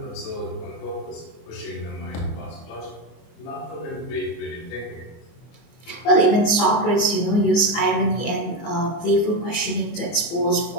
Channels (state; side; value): late; right; 24 ms